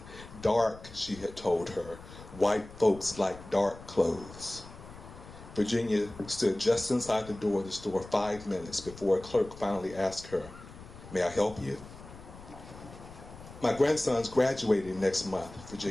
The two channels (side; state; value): left; noise; rumble, 17 dB below the sound